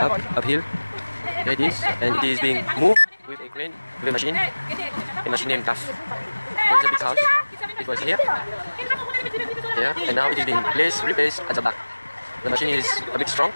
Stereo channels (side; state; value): both; inverted; correlation -1.00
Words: up hill. Here it is, and it is being moved with a crane, with a machine named TAF. There is a big house. It was here, and now it is being replaced at the back. The machine is a bit strong.